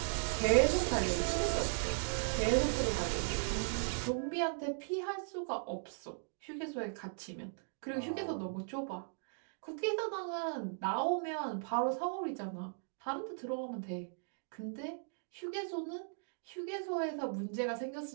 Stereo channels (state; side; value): silent; left; digital silence